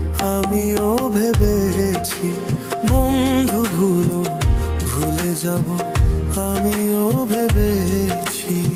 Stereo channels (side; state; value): both; identical; correlation 1.00